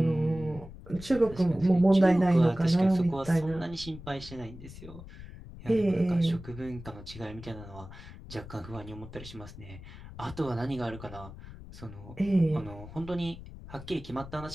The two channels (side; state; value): left; noise; rumble, 15 dB below the sound